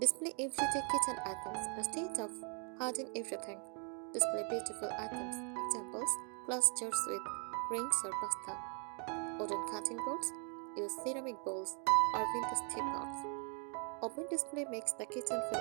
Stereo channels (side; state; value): left; quieter; 39.1 dB